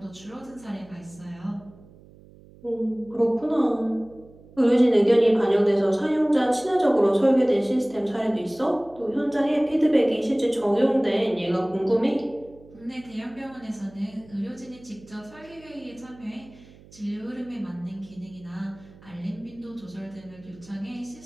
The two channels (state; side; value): noise; right; hum, 23 dB below the sound